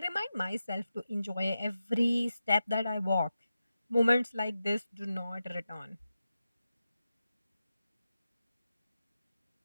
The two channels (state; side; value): inverted; both; correlation -0.91